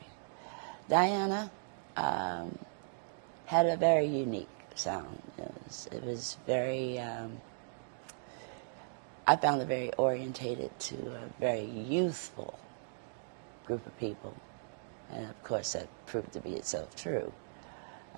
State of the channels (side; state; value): left; silent; digital silence